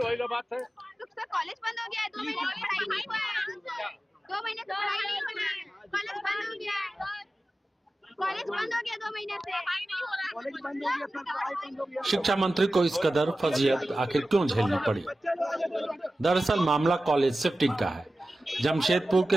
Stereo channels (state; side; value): normal; both; correlation 0.95